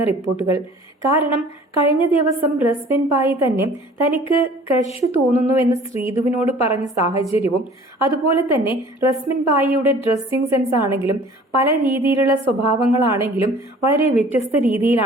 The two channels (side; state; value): both; normal; correlation 0.49